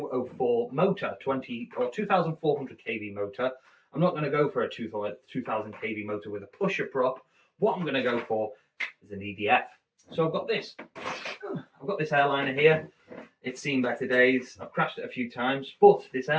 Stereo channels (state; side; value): identical; both; correlation 1.00